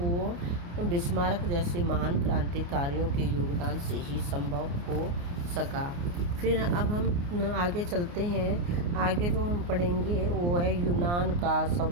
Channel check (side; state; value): left; late; 29 ms